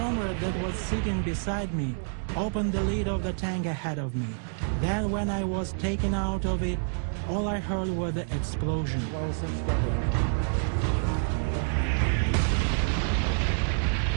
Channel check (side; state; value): left; silent; 59 dB below the other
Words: that was sitting beside me opened the lid of the tank ahead of me. Then when I was taken out of it, all I heard was the explosion.